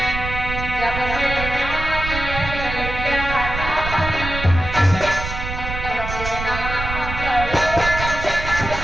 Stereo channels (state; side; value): noise; right; rumble, 6 dB below the sound